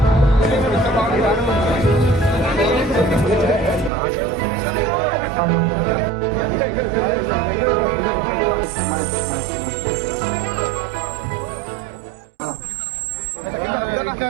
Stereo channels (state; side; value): drops out; left; at 3.9 s